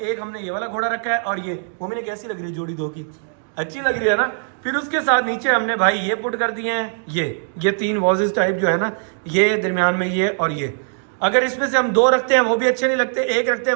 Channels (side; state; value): left; silent; digital silence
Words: हमने ये वाला घोड़ा रखा है, और ये मोमिन कैसी लग रही है जोड़ी दो की? अच्छी लग रही है ना। फिर उसके साथ नीचे हमने भाई ये पुट कर दिए हैं, ये तीन वॉजेस टाइप जो है ना, ये दरमियान में ये और ये। अगर इसमें से हम दो रखते हैं वो भी अच्छे नहीं लगते, एक रखते हैं